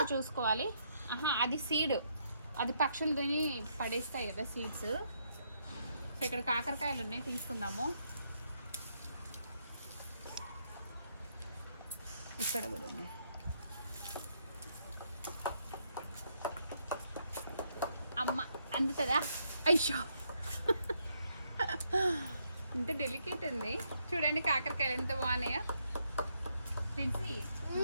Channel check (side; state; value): both; inverted; correlation -0.75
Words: చూసుకోవాలి. అది సీడ్, అది పక్షులు తిని పడేస్తాయి కదా సీడ్స్. సో ఇక్కడ కాకరకాయలు ఉన్నాయి, తీసుకుందాము. ఇక్కడ కూడా ఉన్నాయి. అమ్మ అందుతుందా? అయ్యో ఇంత డెలికేట్ ఉంది చూడండి. కాకరకాయలు ఎంత బాగున్నాయో.